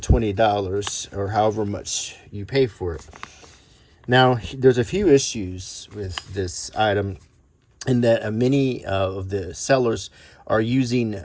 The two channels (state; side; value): identical; both; correlation 1.00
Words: or however much you pay for it. Now, there's a few issues with this item in that many of the sellers are using